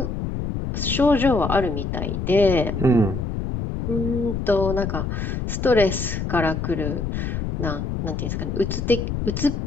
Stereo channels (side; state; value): left; noise; rumble, 3 dB below the sound